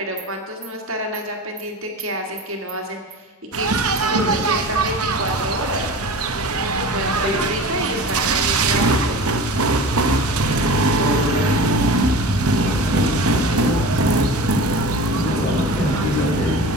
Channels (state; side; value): normal; both; correlation 0.35